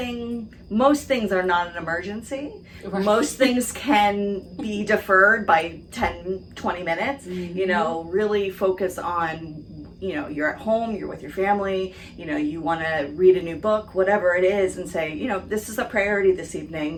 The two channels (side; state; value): both; identical; correlation 1.00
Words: things are not an emergency. Right. Most things can be deferred by 10, 20 minutes. Really focus on, you're at home, you're with your family, you want to read a new book, whatever it is, and say, this is a priority this